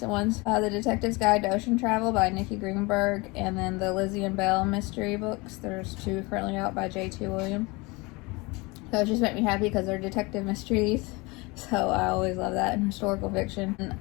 ones. The Detective's Guide to Ocean Travel by Nikki Greenberg, and then the Lizzie and Belle mystery books. There's 2 currently out by J.T. Williams. So it just made me happy because they're detective mysteries. So I always love that in historical fiction.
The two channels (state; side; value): quieter; right; 25.5 dB